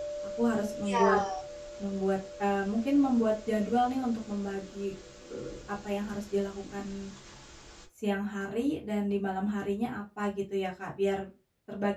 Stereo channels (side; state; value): both; identical; correlation 1.00